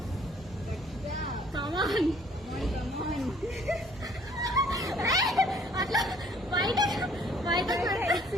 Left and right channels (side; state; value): both; normal; correlation 0.59